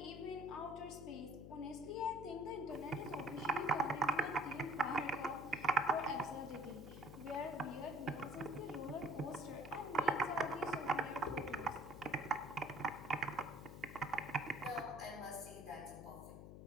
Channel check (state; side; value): noise; left; hum, 12 dB below the sound